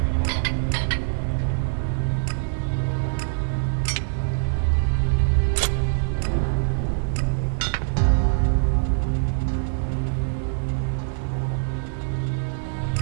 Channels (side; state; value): left; silent; digital silence